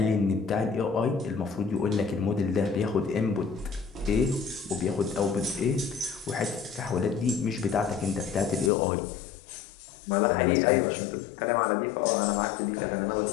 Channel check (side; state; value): right; drops out; at 8.7 s